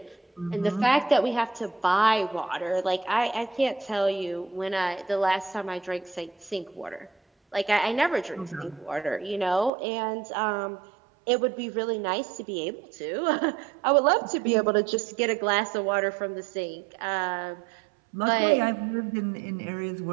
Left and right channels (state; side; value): drops out; left; at 9.7 s